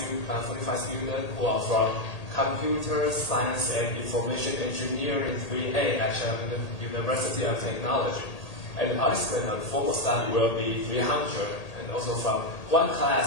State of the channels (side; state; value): right; late; 1.8 ms